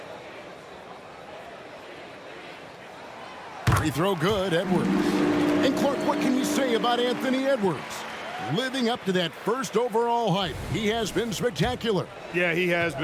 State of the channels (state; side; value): identical; both; correlation 1.00